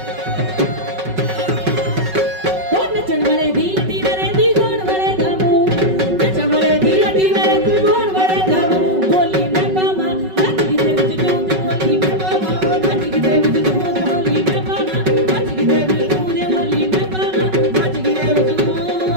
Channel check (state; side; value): late; left; 5.4 ms